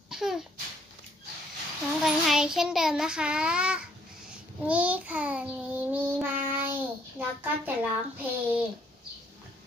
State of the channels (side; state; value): both; normal; correlation 0.66